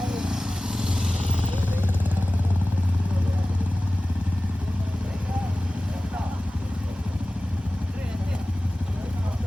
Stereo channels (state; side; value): normal; both; correlation 0.97